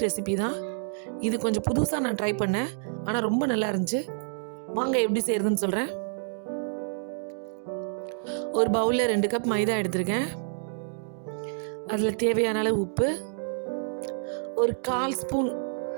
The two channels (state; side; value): silent; left; digital silence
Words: ரெசிபி தான். இது கொஞ்சம் புதுசாக நான் ட்ரை பண்ணேன். ஆனால் ரொம்ப நல்லா இருந்துச்சு. வாங்க எப்படி செய்கிறதுன்னு சொல்கிறேன். ஒரு பவுலில் 2 கப் மைதா எடுத்திருக்கேன். அதில் தேவையான அளவு உப்பு, ஒரு 1/4 ஸ்பூன்